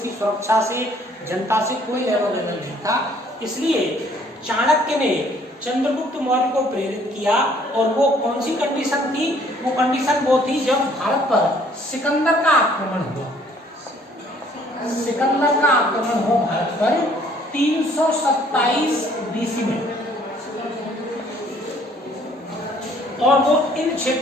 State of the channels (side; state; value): both; normal; correlation 0.60